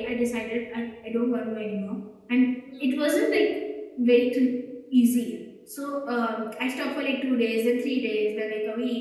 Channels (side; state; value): both; identical; correlation 1.00